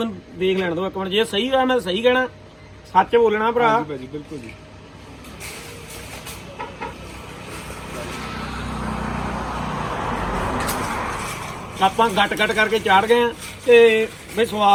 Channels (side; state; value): both; identical; correlation 1.00